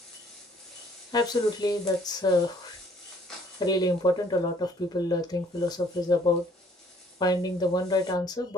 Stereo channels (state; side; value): normal; both; correlation 0.60